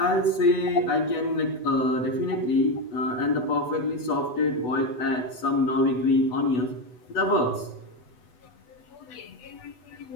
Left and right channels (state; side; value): late; right; 8.1 ms